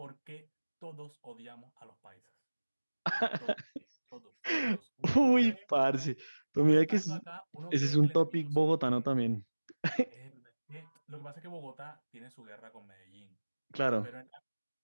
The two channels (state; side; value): inverted; both; correlation -1.00